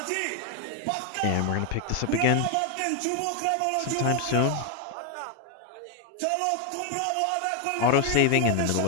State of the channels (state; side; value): different; both; correlation 0.01